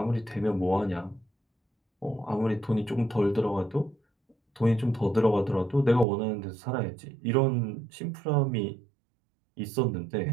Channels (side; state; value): left; drops out; at 6.1 s